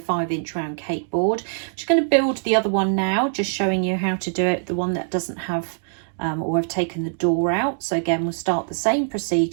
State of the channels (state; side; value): silent; left; digital silence